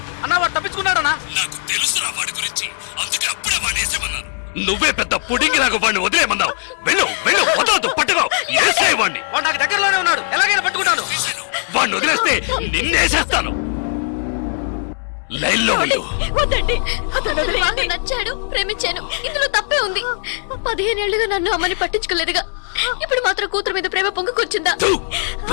అన్నా వాడు తప్పించుకున్నాడన్నా నాకు తెలుసురా వాడి గురించి అందుకే అప్పుడే వాడిని వేసేమన్నాను నువ్వే పెద్ద పుడింగిలాగా వాడిని వదిలేమన్నావు వెళ్ళు వెళ్ళు వదలదు పట్టుకో వేసే వాడిని వాడు నాకు దగ్గరలోనే ఉన్నాడు ఎలాగైనా పట్టుకుంటాను వాడిని వదిలేస్తే నిన్నేసేస్తాను లైన్లో వెళ్ళు నాకు నచ్చాడు ప్రేమించాను ఇందులో తప్పే ఉంది 15 ఏళ్లుగా నన్ను అమ్మని పట్టించుకోలేదుగా ఇప్పుడు మాత్రం కూతురు మీద ప్రేమ పొంగుకొచ్చిందా థు,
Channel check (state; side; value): silent; right; digital silence